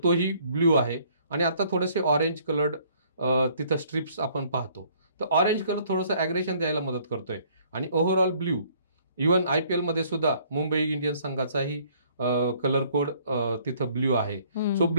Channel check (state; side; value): inverted; both; correlation -0.60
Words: तोही ब्ल्यू आहे आणि आता थोडेसे ऑरेंज कलर्ड तिथं स्ट्रिप्स आपण पाहतो. तर ऑरेंज कलर थोडंसं ॲग्रेशन द्यायला मदत करतोय आणि ओव्हरऑल ब्ल्यू. इव्हन IPL मध्ये सुद्धा मुंबई इंडियन्स संघाचाही कलर कोड तिथं ब्ल्यू आहे. सो